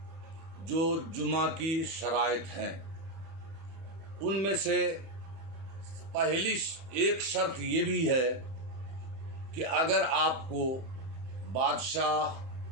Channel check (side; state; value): left; late; 30 ms